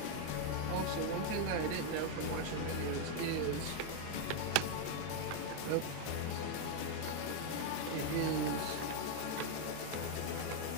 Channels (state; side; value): different; both; correlation 0.01